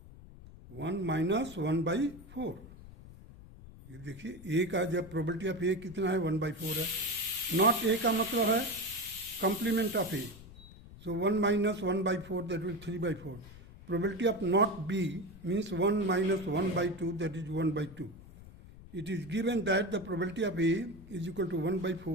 1 minus 1 by 4. ये देखिए A का जब probability of A कितना है 1 by 4 है. Not A का मतलब है complement of A. So 1 minus 1 by 4, that will 3 by 4. Probability of not B means 1 minus 1 by 2, that is 1 by 2. It is given that the probability of A is equal to 1 by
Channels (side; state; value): left; noise; rumble, 18 dB below the sound